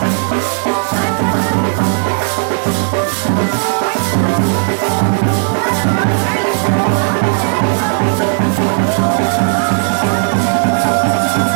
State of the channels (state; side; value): silent; left; 66 dB below the other